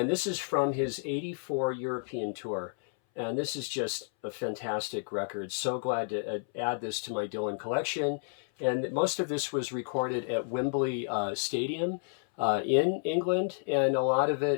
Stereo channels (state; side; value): silent; right; 57 dB below the other